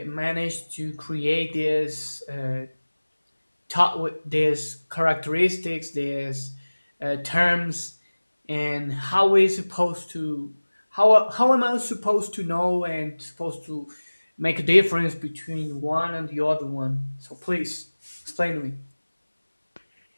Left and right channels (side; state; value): both; inverted; correlation -1.00